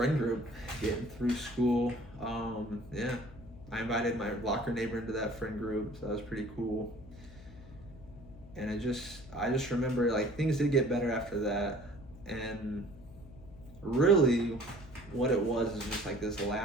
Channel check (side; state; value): left; noise; hum, 18 dB below the sound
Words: group getting through school. Yeah, I invited my locker neighbor into that friend group, so that was pretty cool. And I just remember, like, things did get better after that. And really what it was is just like this